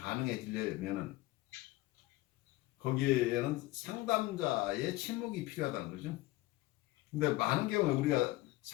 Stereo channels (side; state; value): right; quieter; 18.8 dB